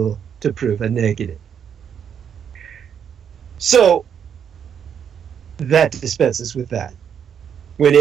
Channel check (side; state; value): left; quieter; 8.0 dB